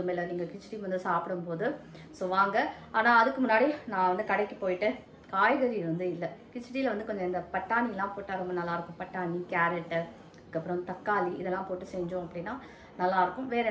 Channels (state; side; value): identical; both; correlation 1.00